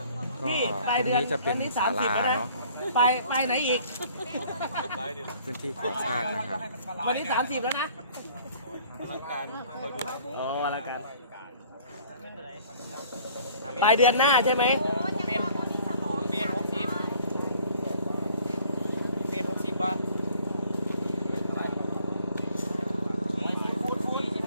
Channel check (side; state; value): both; inverted; correlation -0.55